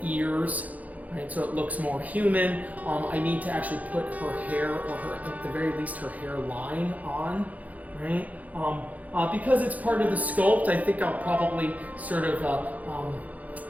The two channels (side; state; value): left; late; 0.076 ms